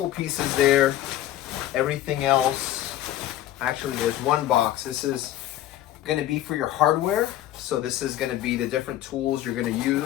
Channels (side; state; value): right; quieter; 13.1 dB